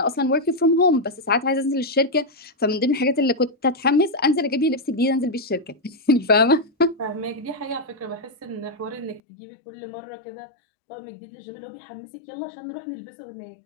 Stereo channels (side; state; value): right; drops out; at 9.2 s